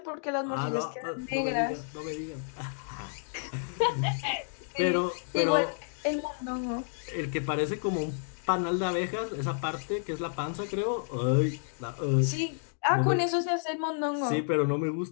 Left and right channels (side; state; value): right; silent; digital silence